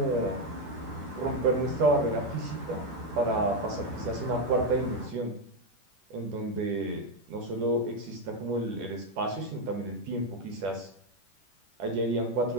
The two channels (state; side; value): late; left; 10 ms